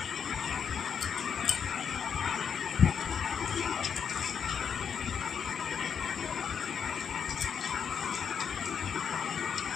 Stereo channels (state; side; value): quieter; right; 7.2 dB